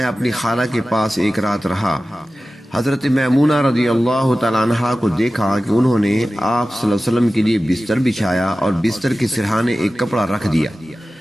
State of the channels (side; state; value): both; normal; correlation 0.95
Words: اپنی خالہ کے پاس ایک رات رہا۔ حضرت میمونہ رضی اللہ تعالی عنہا کو دیکھا کہ انہوں نے آپ صلی اللہ علیہ وسلم کے لیے بستر بچھایا اور بستر کے سرہانے ایک کپڑا رکھ دیا۔